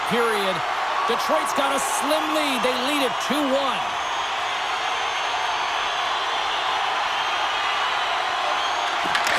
period. Detroit's got a slim lead. They lead it 2-1.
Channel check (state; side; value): identical; both; correlation 1.00